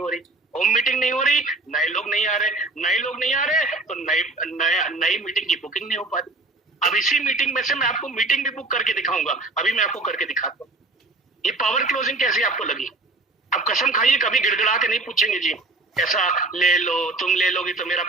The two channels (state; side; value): quieter; left; 3.0 dB